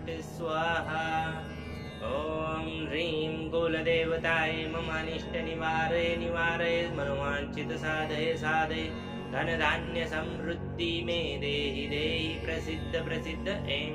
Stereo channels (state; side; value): identical; both; correlation 1.00